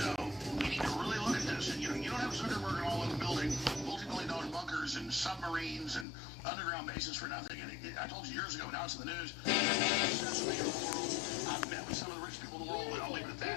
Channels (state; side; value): drops out; right; at 6.1 s